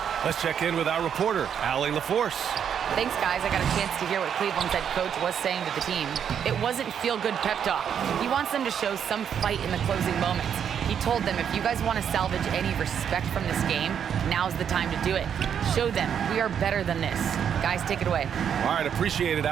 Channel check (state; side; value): quieter; left; 8.2 dB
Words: Let's check in with our reporter, Allie LaForce. Thanks, guys. I got a chance to hear what Cleveland's head coach was saying to the team. It wasn't feel-good pep talk. He wants them to show some fight in the closing moments. He told them, if you guys want to salvage any respect from this game, now's the time to do it. Show them we are better than this. Guys, take it away. All right, appreciate it,